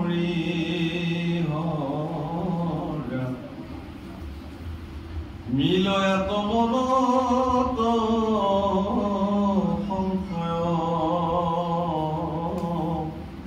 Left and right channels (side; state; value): both; identical; correlation 1.00